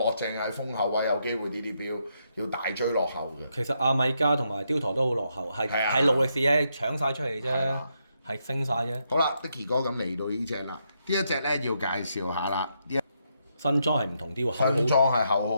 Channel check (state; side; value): inverted; both; correlation -0.79